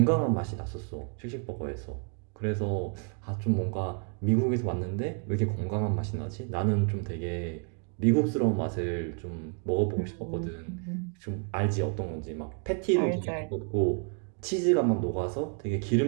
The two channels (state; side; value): quieter; left; 39.8 dB